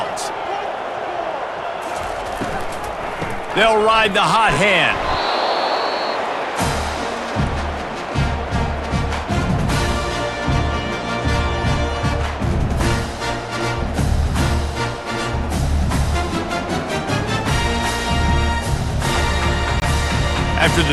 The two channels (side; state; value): both; identical; correlation 1.00